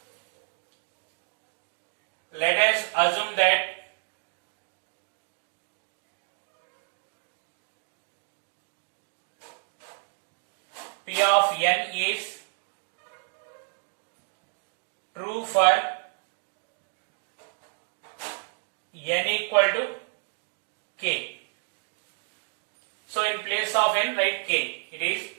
Let us assume that P of n is true for n equal to k. So in place of n write k. It is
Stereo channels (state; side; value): silent; left; 58 dB below the other